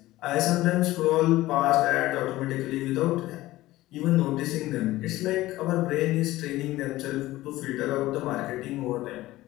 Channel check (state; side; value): quieter; right; 17.0 dB